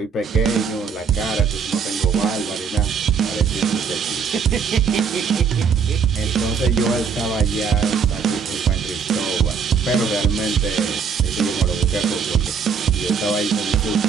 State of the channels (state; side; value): quieter; left; 6.1 dB